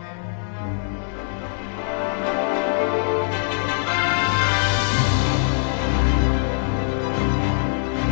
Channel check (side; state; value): right; silent; digital silence